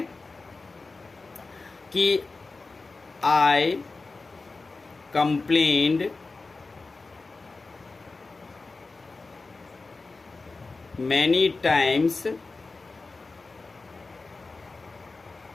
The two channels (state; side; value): quieter; right; 3.8 dB